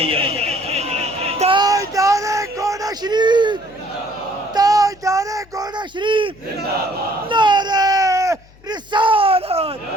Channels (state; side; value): noise; left; hum, 26 dB below the sound